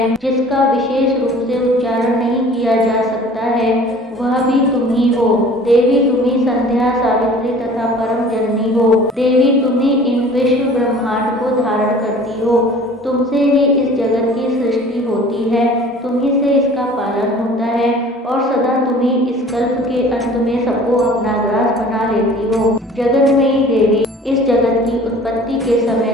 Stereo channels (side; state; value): both; normal; correlation 0.47